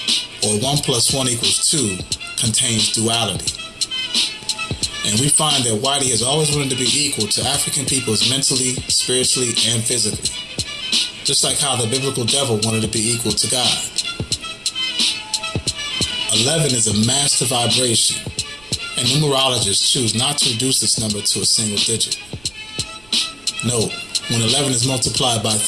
or 1 plus 1 equals 2, contains duality. And we find that Whitey has always wanted to be equal to African peoples mentally, spiritually, and physically. Just like how the biblical devil wanted to be equal to God. 11 is a master vibration, and numerologists choose not to reduce this number to a single digit. Note, when 11 is multiplied by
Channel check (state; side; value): noise; right; rumble, 26 dB below the sound